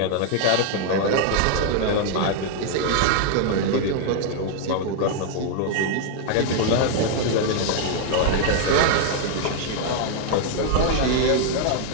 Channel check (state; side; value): different; both; correlation 0.00